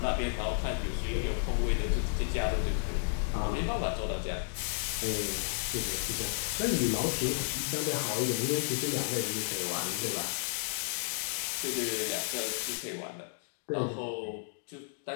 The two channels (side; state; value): right; silent; digital silence